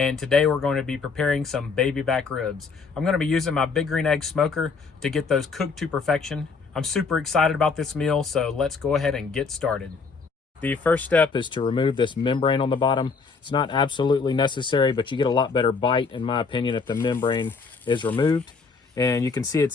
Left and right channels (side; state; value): right; quieter; 4.8 dB